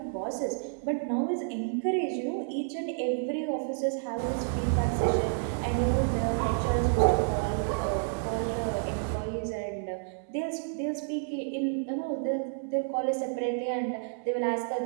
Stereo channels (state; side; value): silent; left; digital silence